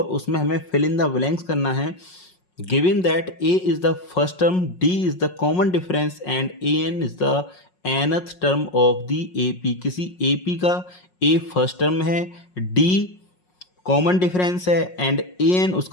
उसमें हमें फिल इन द ब्लैंक्स करना है। Given that A is the first term, D is the common difference and A N is the nth term of the AP। किसी AP का A फर्स्ट टर्म है, D common difference है and AN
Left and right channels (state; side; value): late; right; 5.5 ms